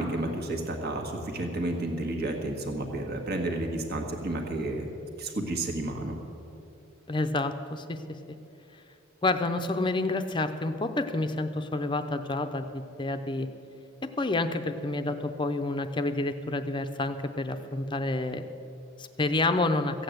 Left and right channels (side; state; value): both; normal; correlation 0.51